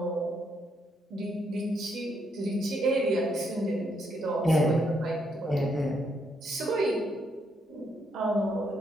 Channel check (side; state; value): both; normal; correlation 0.76